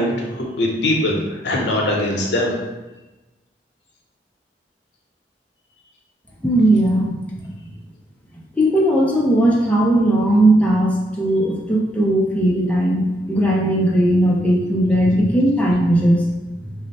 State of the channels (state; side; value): normal; both; correlation 0.76